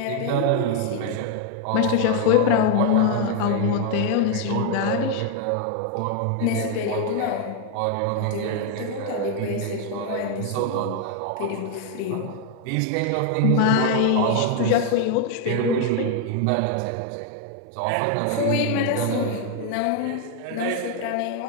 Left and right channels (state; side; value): different; both; correlation 0.00